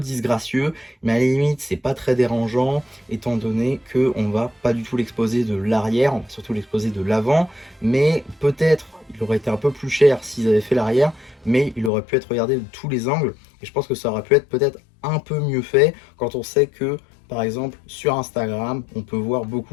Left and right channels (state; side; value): drops out; right; at 11.9 s